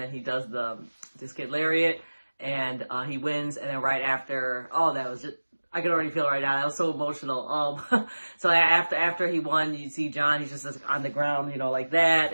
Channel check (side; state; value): both; inverted; correlation -1.00